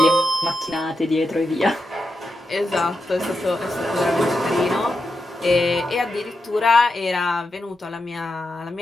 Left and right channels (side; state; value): both; normal; correlation 0.87